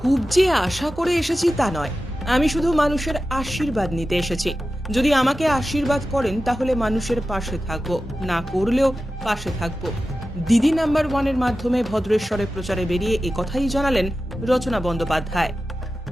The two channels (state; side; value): normal; both; correlation 0.93